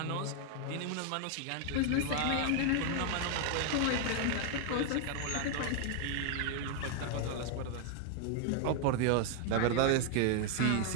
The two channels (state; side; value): different; both; correlation 0.00